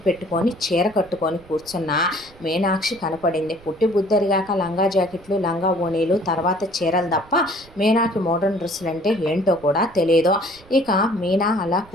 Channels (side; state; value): right; noise; rumble, 24 dB below the sound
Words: పెట్టుకొని చీర కట్టుకొని కూర్చున్న మీనాక్షి కనపడింది. పుట్టి బుద్ధరిగాక లంగా జాకెట్లు, లంగా ఓణీలు, తర్వాత చీరలు తప్ప మీనాకి మోడర్న్ డ్రెస్సులు అంటే ఏంటో కూడా తెలియదు. ఇక మీనా అలా